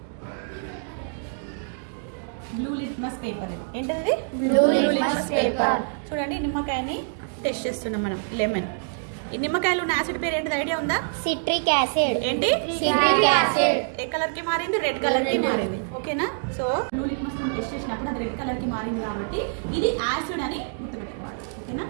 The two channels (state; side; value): silent; left; digital silence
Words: Blue litmus paper. ఏంటది? Blue litmus paper. చూడండి, నిమ్మకాయని టెస్ట్ చేస్తున్నాం మనం. లెమన్. ఈ నిమ్మకాయలో ఉన్న యాసిడ్ పేరు ఏంటిది? ఐడియా ఉందా? Citric acid. ఏంటి? Citric acid. ఏ కలర్ కి మారింది? రెడ్ కలర్ కి మారింది. ఓకేనా? సో బ్లూ లిట్మస్ టెస్ట్ చేసినప్పుడు అది రెడ్ కలర్ కి మారింది కాబట్టి ఇది యాసిడ్ అని గుర్తుపెట్టుకోవాలి. ఓకేనా?